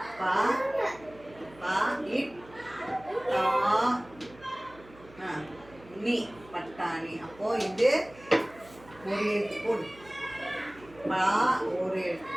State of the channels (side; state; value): right; noise; hum, 22 dB below the sound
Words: பா பா இட் தா நீ பட்டாணி. அப்போ இது ஒரு எழுத்து போடு. பா ஒரு எழுத்து,